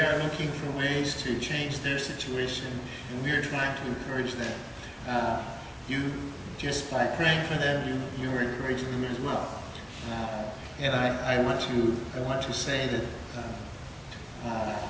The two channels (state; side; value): identical; both; correlation 1.00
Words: looking for ways to change their situation, and we are trying to encourage them. You, just by praying for them, you are encouraging them as well. And I want to say that